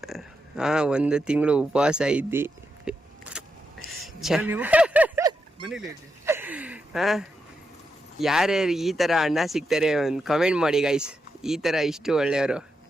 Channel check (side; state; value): both; normal; correlation 0.84